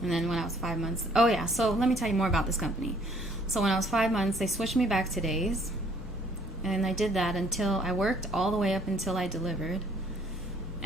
And then when I was 5 months... Oh, yeah. So let me tell you more about this company. So when I was 5 months, they switched me back to days. And I did that until... I worked all the way up until I delivered.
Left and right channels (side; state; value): both; normal; correlation 0.61